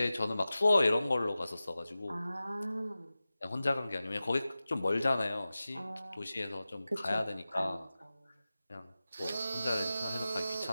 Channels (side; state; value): both; inverted; correlation -0.95